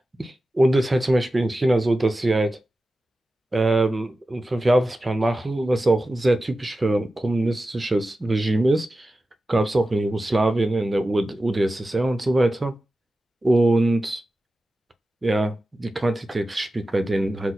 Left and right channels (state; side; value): normal; both; correlation 0.94